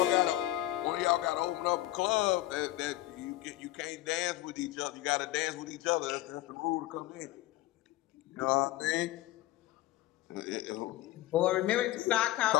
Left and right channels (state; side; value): quieter; right; 16.0 dB